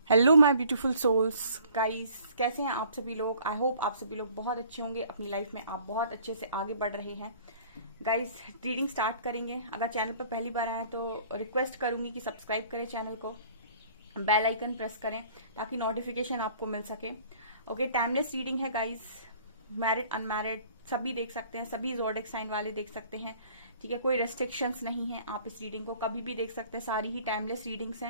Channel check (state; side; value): inverted; both; correlation -0.53